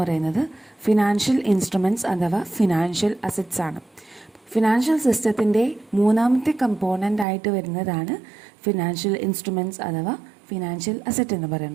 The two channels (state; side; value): drops out; left; at 7.2 s